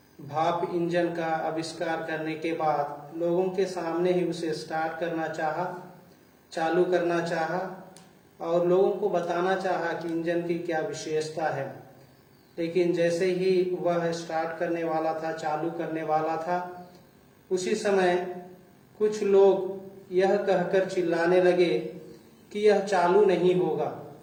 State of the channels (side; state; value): both; identical; correlation 1.00